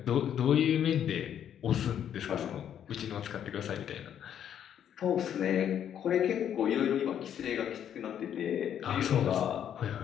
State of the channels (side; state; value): right; quieter; 9.5 dB